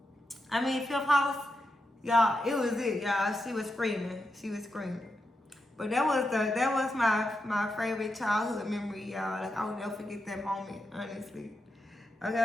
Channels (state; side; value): normal; both; correlation 0.87